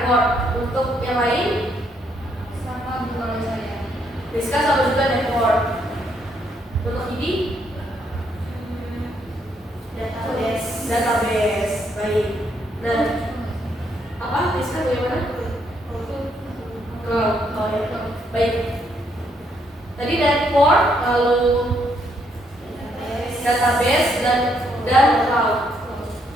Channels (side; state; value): both; normal; correlation 0.73